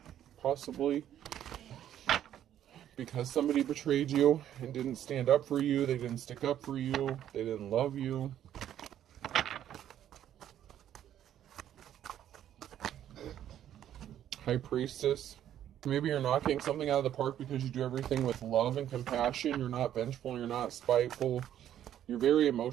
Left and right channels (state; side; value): quieter; left; 10.9 dB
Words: possibly. Because somebody betrayed you and didn't stand up for you, they didn't stick up for you, they didn't love you. High Priestess. Maybe you're knocking something out of the park because you do everything with love and compassion. You're not vengeful, you're not spiteful. You're very